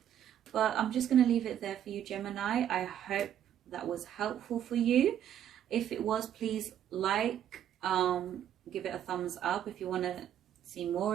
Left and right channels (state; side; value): quieter; left; 10.2 dB